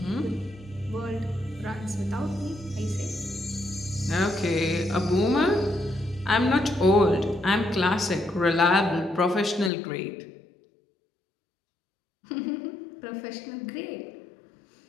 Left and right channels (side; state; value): right; drops out; at 9.7 s